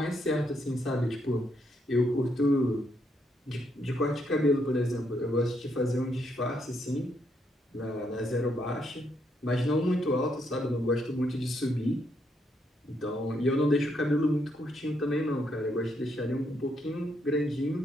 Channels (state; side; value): normal; both; correlation 0.76